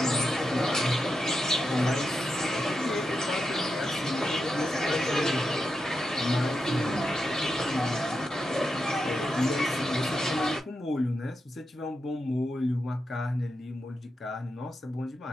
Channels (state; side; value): normal; both; correlation 0.87